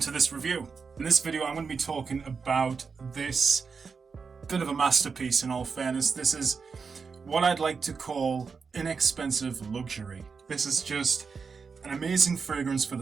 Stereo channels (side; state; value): left; quieter; 5.3 dB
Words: this review. In this video I'm going to be talking about this bit of a masterpiece. In all fairness, this is what I'd like to call inexpensive luxury. This is just an amazing fragrance for